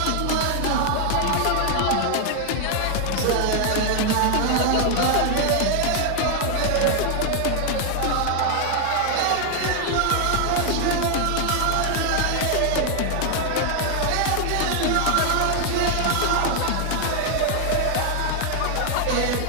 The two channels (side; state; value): both; different; correlation 0.00